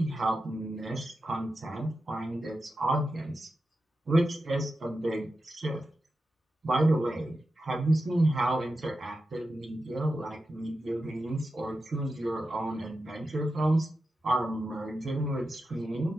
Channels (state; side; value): normal; both; correlation 0.90